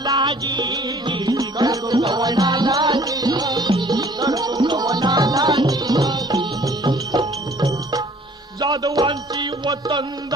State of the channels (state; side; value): normal; both; correlation 0.55